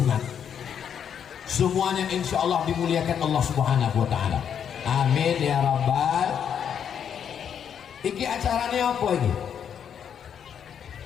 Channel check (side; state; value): right; quieter; 8.3 dB